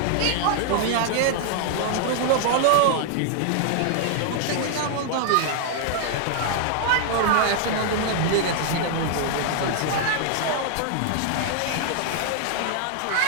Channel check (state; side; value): different; both; correlation 0.00